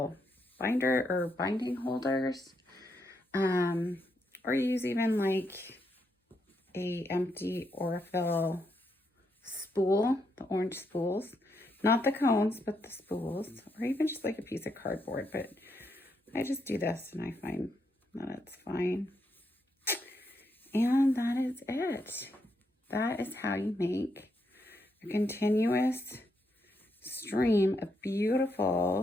binder or binding holders, or use even like a empty Aurifil spool, the orange spools, not the cones, but the spools, or even just like a piece of cardboard. But I just do this and I find that it's fine. And that is it. That is how you make a continuous stream of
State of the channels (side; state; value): both; normal; correlation 0.79